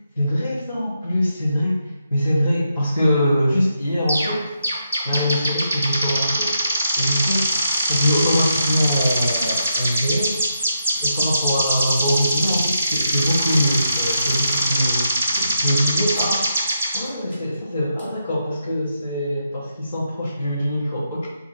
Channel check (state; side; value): inverted; both; correlation -0.82